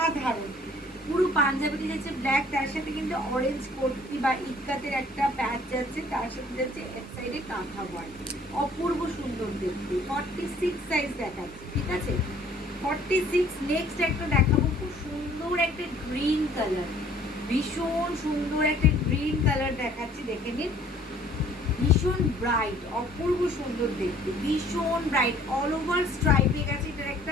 পুরো পাঞ্জাবিটি যাচ্ছে ব্ল্যাক, তার সাথে কিন্তু অরেঞ্জ কোটি বা ইক্কাতের একটা প্যাচ যাচ্ছে, তার সাথে যাচ্ছে এক সাইডে কাঁথা ওয়ার্ক, অপূর্ব সুন্দর দেখতে। 46 সাইজ দেখাচ্ছে। ঠিক আছে, 46। নেক্সট একটা দেখাবো, খুব সুন্দর একটা গ্রিন কালার, ভীষণ সুন্দর একটা গ্রিন কালার দেখাচ্ছি, দেখে নিন। ভীষণ ব্রাইট, অপূর্ব সুন্দর দেখতে, ভীষণ ব্রাইট, অল ওভার স্ট্রাইপে গেছে, এটার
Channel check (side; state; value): both; normal; correlation 0.56